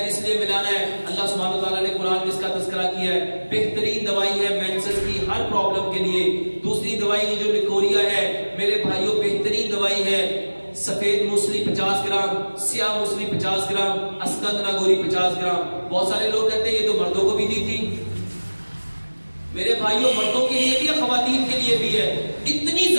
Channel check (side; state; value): both; inverted; correlation -1.00